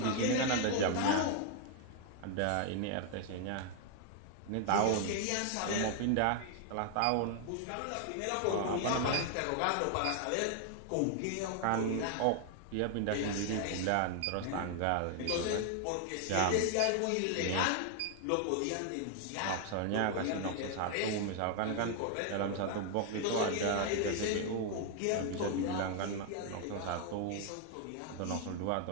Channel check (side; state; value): both; different; correlation 0.00